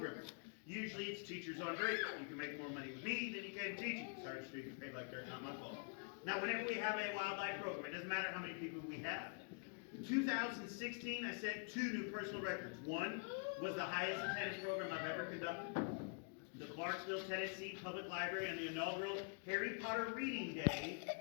Usually, it's teachers on break. You can make more money with me than you can teaching. Sorry, you get paid like dirt, not my fault. Now, whenever we have a wildlife program, it doesn't matter how many people we have. In 2016, I set 2 new personal records. One was the highest attendance program I've ever conducted. The Clarksville, Tennessee Public Library on the inaugural Harry Potter Reading Day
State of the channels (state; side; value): quieter; right; 39.4 dB